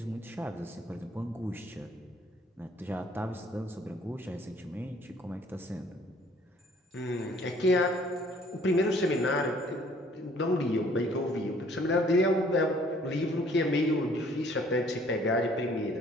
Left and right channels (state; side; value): normal; both; correlation 0.59